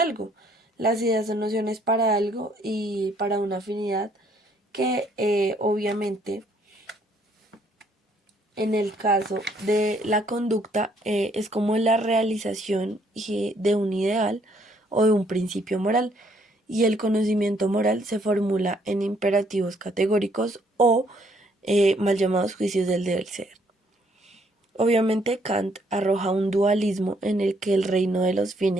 Las ideas son nociones para algo y para una afinidad que obviamente en el caso de la conducta es como la realización de un ideal o de un principio moral, y el conocimiento moral se formula en imperativos categóricos o mal llamados juicios del deber ser. Obviamente Kant arroja un dualismo en el que el reino de los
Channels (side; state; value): both; normal; correlation 0.67